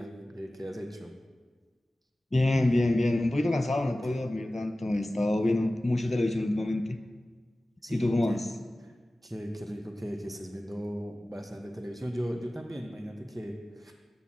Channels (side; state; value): both; normal; correlation 0.97